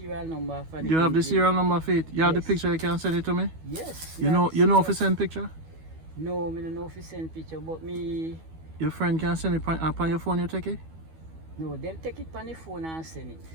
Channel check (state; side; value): late; left; 12 ms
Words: number for the You have the engine. serial number for it? You have the Yes. picture, you can send it to me? Yes. You have know the if you serial- send picture? No, me don't know if you send picture, but me, Your friend can send it up on your phone, you take it? no, them take it on the phone and send